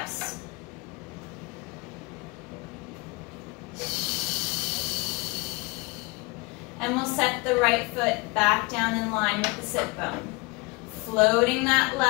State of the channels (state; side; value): quieter; right; 26.3 dB